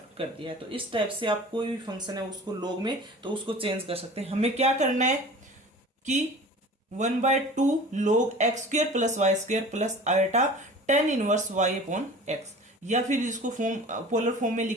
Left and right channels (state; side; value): normal; both; correlation 0.41